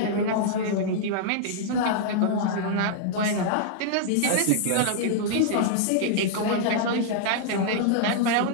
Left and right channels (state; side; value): different; both; correlation -0.01